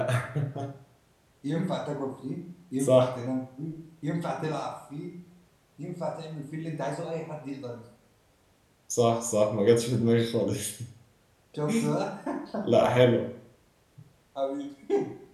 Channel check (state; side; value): identical; both; correlation 1.00